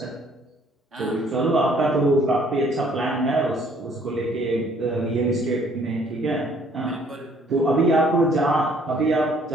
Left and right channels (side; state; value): both; normal; correlation 0.61